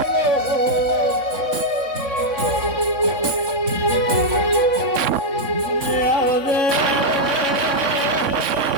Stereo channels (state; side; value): late; left; 3.6 ms